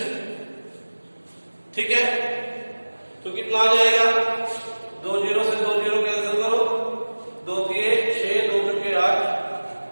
ठीक है। तो कितना आ जाएगा 2 0 से 2 0 कैंसिल करो, 2 दिए 6 2 के 8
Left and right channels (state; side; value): inverted; both; correlation -1.00